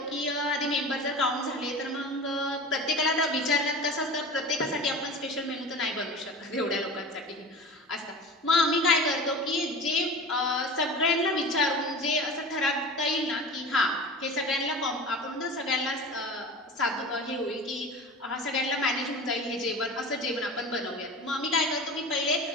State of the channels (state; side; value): normal; both; correlation 0.34